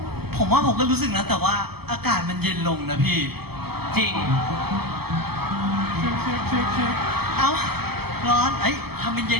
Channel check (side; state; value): left; late; 0.96 ms